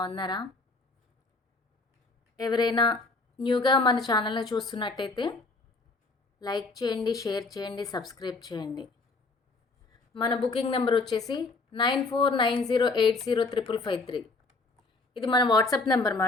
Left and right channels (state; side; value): quieter; right; 3.7 dB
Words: ఎవరైనా న్యూగా మన ఛానల్ని చూస్తున్నట్టయితే లైక్ చేయండి, షేర్ చేయండి, సబ్స్క్రైబ్ చేయండి. మన బుకింగ్ నెంబర్ వచ్చేసి 9490805553. ఇది మన వాట్సాప్ నెంబర్